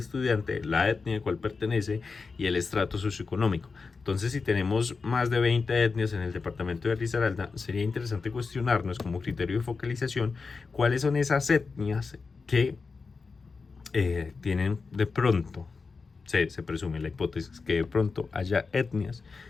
la etnia a cual pertenece y el estrato socioeconómico. Entonces, si tenemos más de 20 etnias en el departamento de Risaralda, sería interesante cuestionarnos como criterio de focalización cuáles son esas etnias que tienen de pronto, se presume la hipótesis que de pronto haya etnias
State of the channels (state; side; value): quieter; right; 4.6 dB